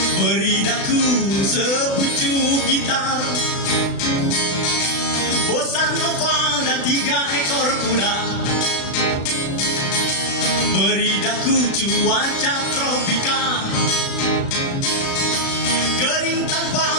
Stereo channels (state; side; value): late; right; 36 ms